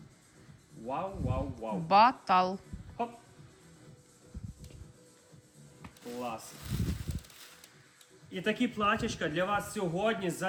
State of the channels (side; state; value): both; identical; correlation 1.00